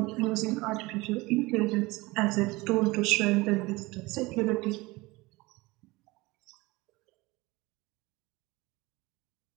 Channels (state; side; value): quieter; left; 22.2 dB